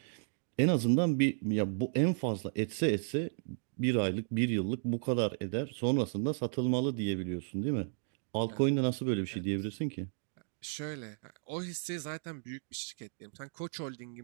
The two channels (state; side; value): silent; left; digital silence